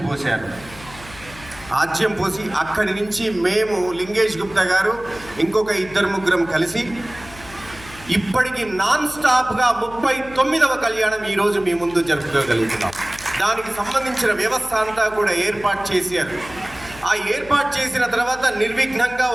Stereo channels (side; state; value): left; noise; hum, 18 dB below the sound